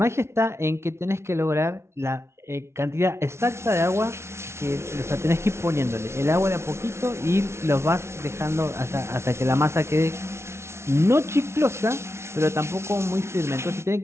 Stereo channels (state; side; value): late; left; 0.13 ms